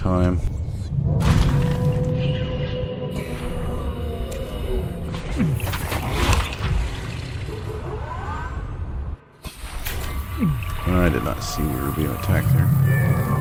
I did not see we were being attacked there.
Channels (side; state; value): both; identical; correlation 1.00